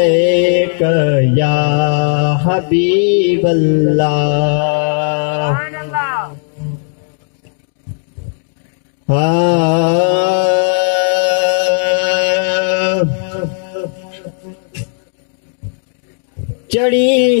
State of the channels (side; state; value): right; silent; digital silence